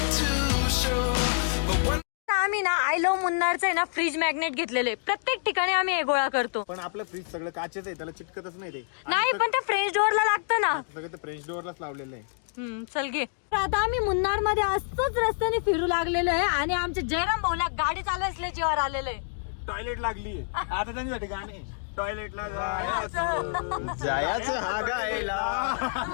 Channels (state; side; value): silent; right; digital silence